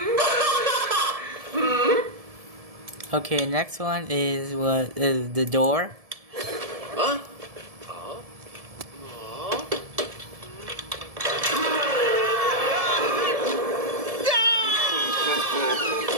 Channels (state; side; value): late; left; 1.7 ms